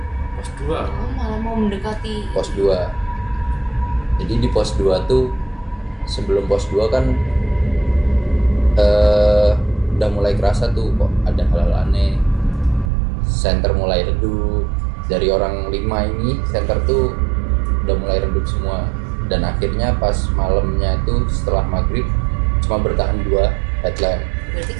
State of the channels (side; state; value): left; drops out; at 12.9 s